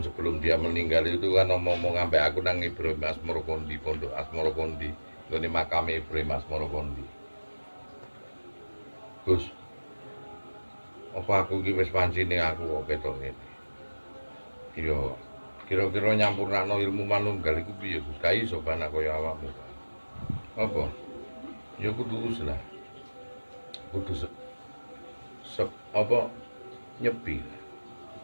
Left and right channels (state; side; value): inverted; both; correlation -1.00